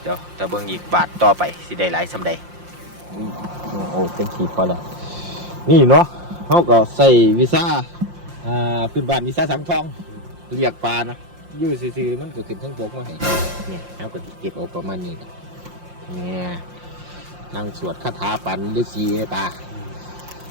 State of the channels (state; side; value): late; left; 5.7 ms